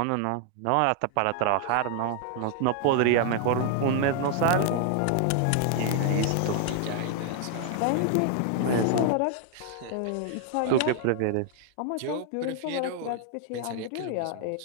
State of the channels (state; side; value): different; both; correlation 0.00